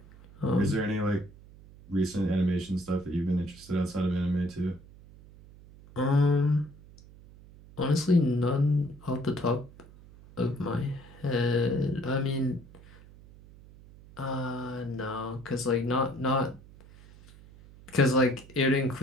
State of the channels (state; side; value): noise; right; hum, 21 dB below the sound